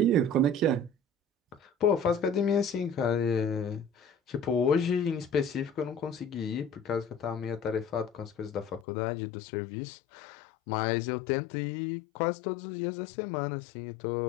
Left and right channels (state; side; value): drops out; right; at 8.8 s